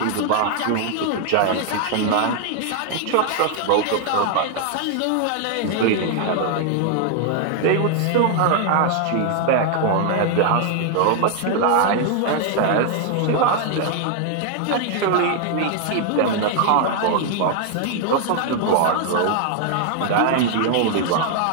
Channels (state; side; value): different; both; correlation 0.00